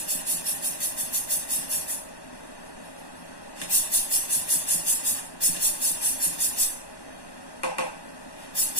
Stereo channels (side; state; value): right; late; 1.1 ms